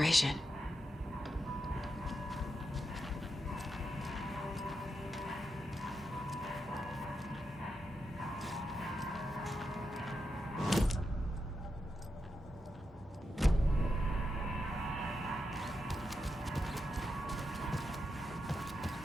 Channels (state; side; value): normal; both; correlation 0.86